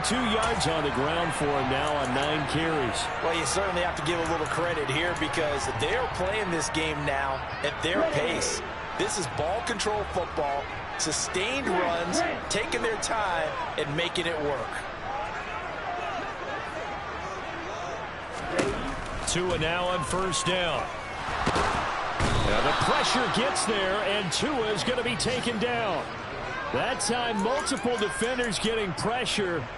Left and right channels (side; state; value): both; identical; correlation 1.00